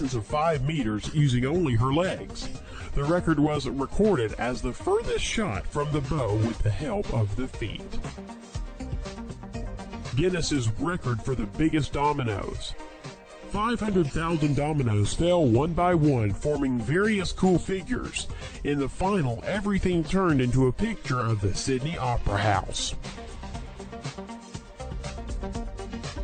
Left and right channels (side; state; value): both; identical; correlation 1.00